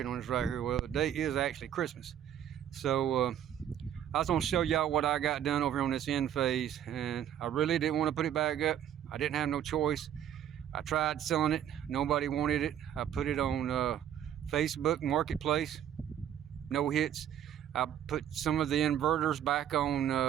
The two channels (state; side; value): quieter; left; 10.2 dB